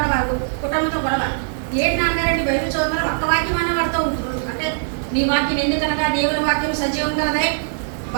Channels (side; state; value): left; silent; digital silence